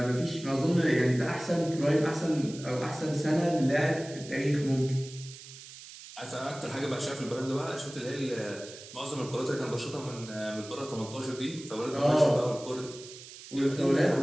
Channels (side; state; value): right; noise; hiss, 16 dB below the sound